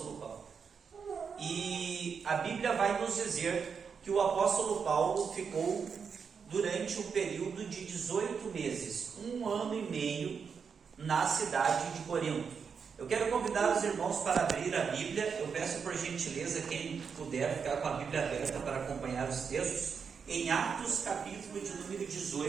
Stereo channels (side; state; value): left; quieter; 6.2 dB